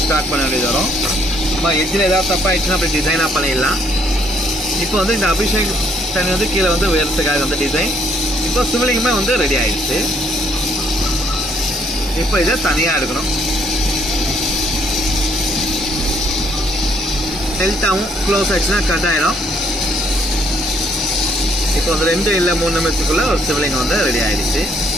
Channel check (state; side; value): normal; both; correlation 0.67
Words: ஸ்டார்ட் பண்ண வேண்டியது வரும். இப்போ எட்ஜில் ஏதாவது தப்பாகிடுச்சுன்னா அப்படி டிசைனாக பண்ணிடலாம். இப்போ வந்து இந்த அபிஷேக் தண்ணி வந்து கீழே வந்து உயரத்துக்காக வந்து டிசைன். இப்போ சிவலிங்கமே வந்து ரெடி ஆகிடுச்சு. இப்போ இதை தனியாக எடுக்கணும். ஹெல்த்தாகவும் க்ளோஸ் ஆகிடுச்சுன்னா கட் ஆகிடும். இப்போ வந்து 2 இல்லை 3 நிமிஷத்துக்குள்ளே ஒரு சிவலிங்கம் வந்து ரெடி ஆகிடுச்சு.